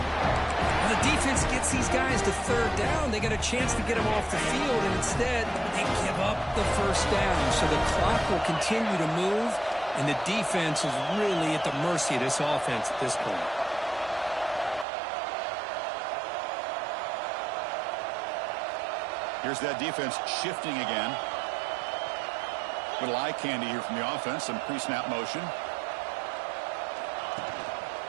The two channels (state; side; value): drops out; left; at 14.9 s